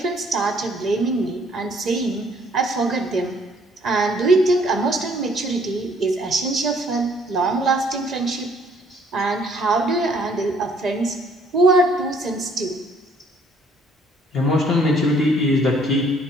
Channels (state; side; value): normal; both; correlation 0.62